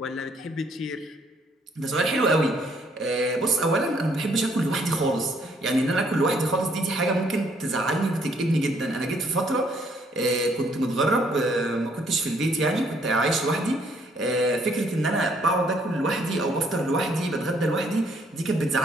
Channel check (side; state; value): both; normal; correlation 0.67